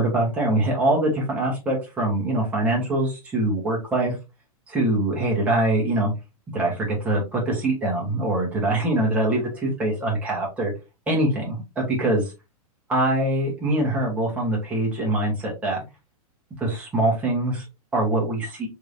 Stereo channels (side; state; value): both; normal; correlation 0.20